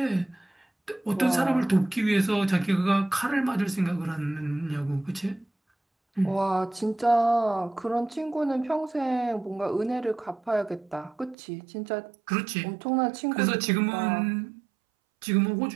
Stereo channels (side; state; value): left; drops out; at 11.4 s